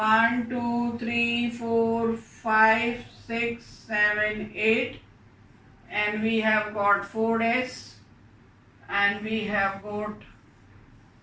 2, 3, 4, 5, 6, 7, 8. And we have got 4s. And we have got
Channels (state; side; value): identical; both; correlation 1.00